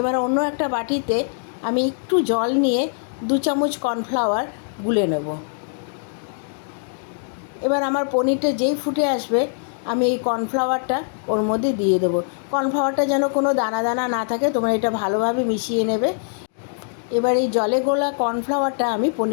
অন্য একটা বাটিতে আমি একটু জল নিয়ে 2 চামচ কর্নফ্লাওয়ার গুলে নেব। এবার আমার পনিরটা যেই ফুটে আসবে আমি এই কর্নফ্লাওয়ারটা ওর মধ্যে দিয়ে দেবো। কর্নফ্লাওয়ারটা যেন কোনো দানা দানা না থাকে, তোমরা এটা ভালোভাবে মিশিয়ে নেবে। এবার এই জলে গোলা কর্নফ্লাওয়ারটা আমি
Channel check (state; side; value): silent; right; digital silence